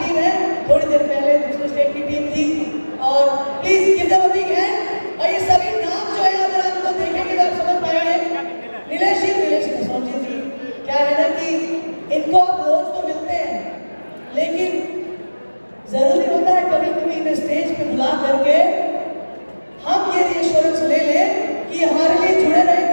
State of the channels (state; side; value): inverted; both; correlation -1.00